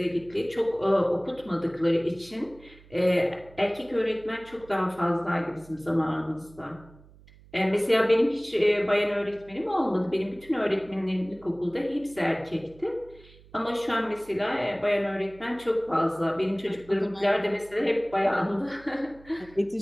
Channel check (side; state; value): right; noise; hum, 24 dB below the sound